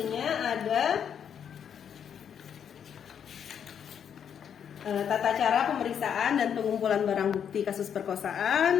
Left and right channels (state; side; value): quieter; right; 8.2 dB